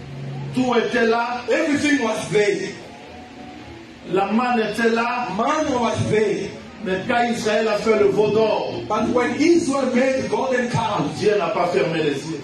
Tout était là. Everything was there. La manne était là. Manna was there. Mais quand Israël a fait le veau d'or, But when Israel made the golden calf, Dieu n'a pas fermé les yeux.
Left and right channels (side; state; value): both; identical; correlation 1.00